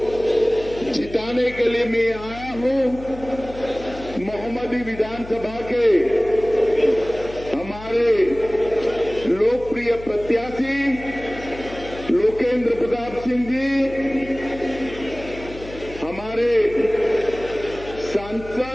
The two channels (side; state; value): left; noise; hum, 15 dB below the sound